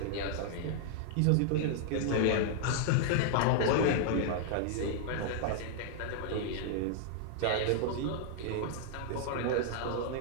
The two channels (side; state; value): both; different; correlation -0.01